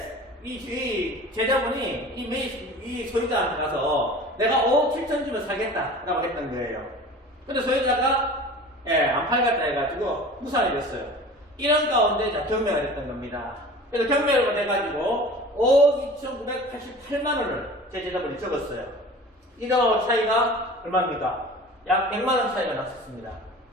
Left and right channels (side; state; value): both; normal; correlation 0.40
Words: 이 제자분이 이 소유자한테 가서 내가 5억 7천 주면 사겠다라고 했던 거예요. 근데 소유자가 안 팔겠다 해가지고 무산이 됐어요. 이런 가운데 경매가 됐던 겁니다. 그래서 경매가 돼가지고 5억 2,988만 원을 제 제자분이 적었어요. 이거 차이가 얼마입니까? 약 100만 원 차이가 났었습니다.